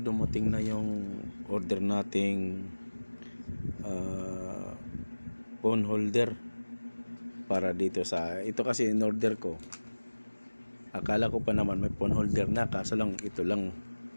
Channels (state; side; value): inverted; both; correlation -1.00